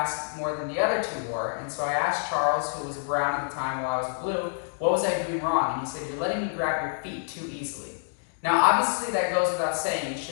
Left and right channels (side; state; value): right; silent; digital silence